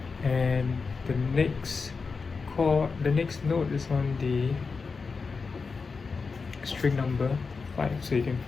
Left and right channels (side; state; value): right; quieter; 4.8 dB